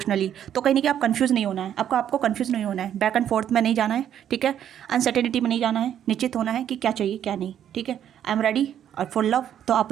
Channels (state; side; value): quieter; left; 10.0 dB